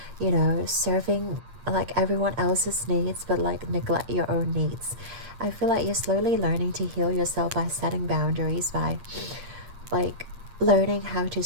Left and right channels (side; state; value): left; late; 8.7 ms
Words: you know, serving like everyone else's needs but like neglect your own needs. I feel like you're slowly learning to heal yourself by setting boundaries, by like learning how to